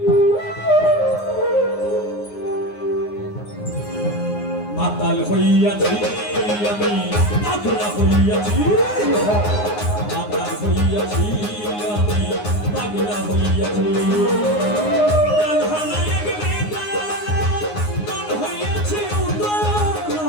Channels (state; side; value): late; right; 9.6 ms